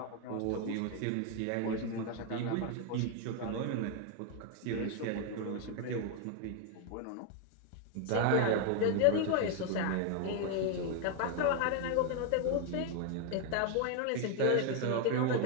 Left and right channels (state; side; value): different; both; correlation 0.01